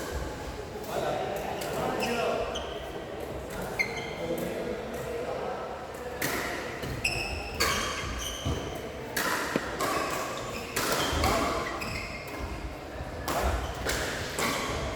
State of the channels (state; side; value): identical; both; correlation 1.00